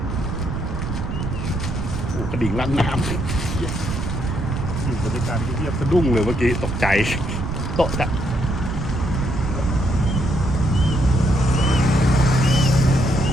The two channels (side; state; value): right; noise; rumble, 5 dB below the sound